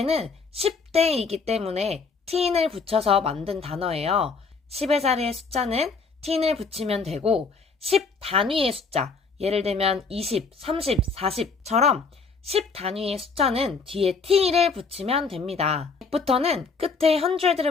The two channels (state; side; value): quieter; right; 4.7 dB